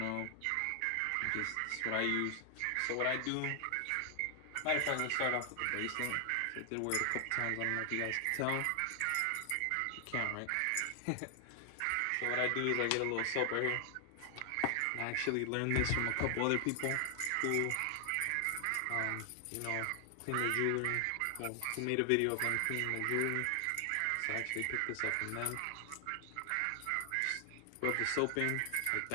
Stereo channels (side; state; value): both; different; correlation 0.00